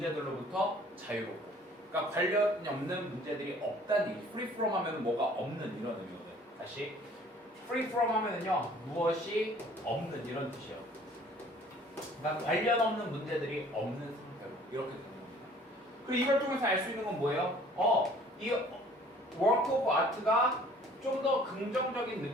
자유롭고. 그러니까 관련이 없는 문제들이 없다는 얘기. free from 하면 뭐가 없는, 이런 의미거든. 다시 free from 하면은요, 무엇이 없는, 이런 뜻이에요. 그러니까 관련 없는 문제들이 없는 상태로 이렇게 되는 겁니다. 그리고 이걸 통해서 알 수 있는 건 뭐예요? 이 work of art가 좀 더 긍정적인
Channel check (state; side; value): normal; both; correlation 0.53